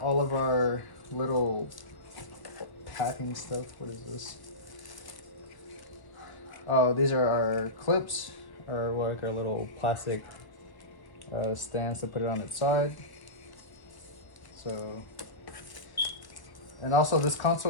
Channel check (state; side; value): late; right; 1.0 ms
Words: of our little packing stuff. What is this? Oh, these are our clips, or like our little plastic stands to put it on its side. So, and also this